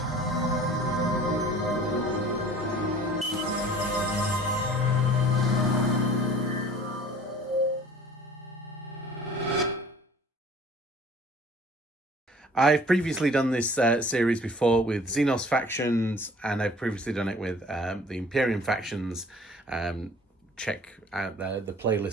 I've previously done this series before with Xenos factions, and I've previously done it with the Imperium factions. Check out the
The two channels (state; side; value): normal; both; correlation 0.49